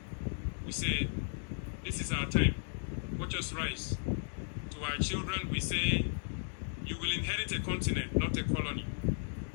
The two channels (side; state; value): right; silent; digital silence